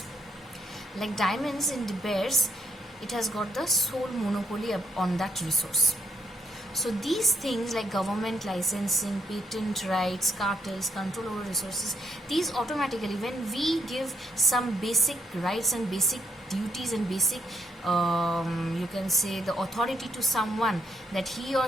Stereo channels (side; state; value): both; normal; correlation 0.74